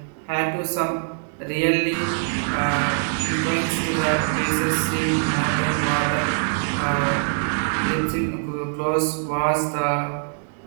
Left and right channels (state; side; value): silent; left; digital silence